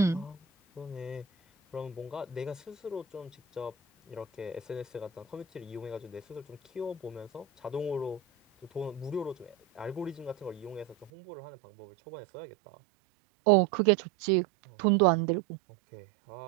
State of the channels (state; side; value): drops out; left; at 11.1 s